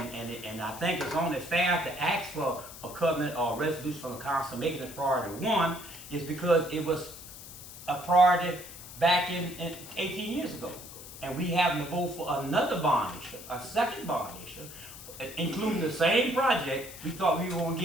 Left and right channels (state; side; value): noise; left; hiss, 14 dB below the sound